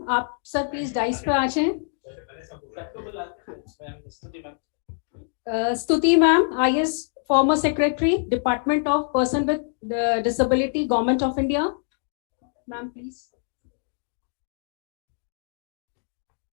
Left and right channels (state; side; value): silent; right; 62 dB below the other